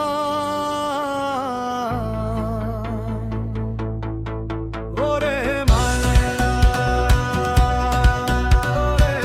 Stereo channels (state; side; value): identical; both; correlation 1.00